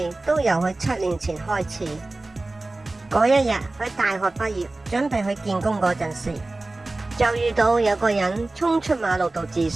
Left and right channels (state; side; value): quieter; left; 3.0 dB